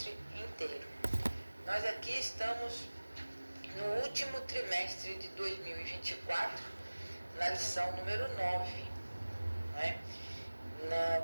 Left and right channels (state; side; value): inverted; both; correlation -1.00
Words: inteiro. Nós aqui estamos no último trimestre de 2024, na lição número 9. Né?